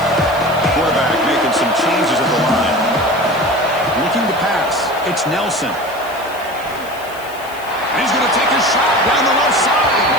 Quarterback making some changes at the line. Looking to pass. It's Nelson. He's going to take a shot down the left side.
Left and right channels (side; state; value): left; noise; hiss, 20 dB below the sound